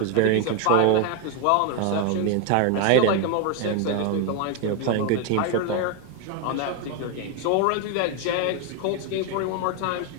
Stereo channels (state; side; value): different; both; correlation 0.01